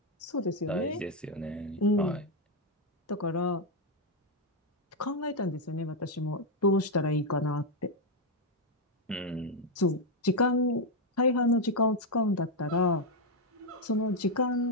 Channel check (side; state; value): both; normal; correlation 0.02